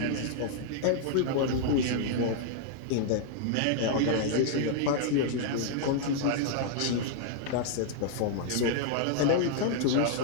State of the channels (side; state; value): both; different; correlation -0.01